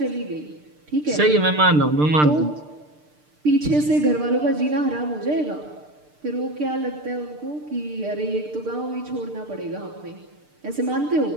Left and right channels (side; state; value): left; late; 6.7 ms